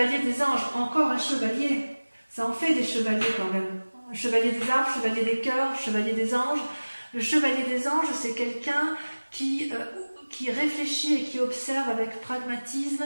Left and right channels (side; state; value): both; inverted; correlation -1.00